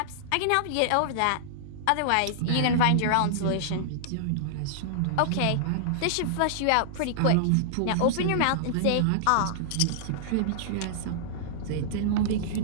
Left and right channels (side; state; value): both; different; correlation -0.01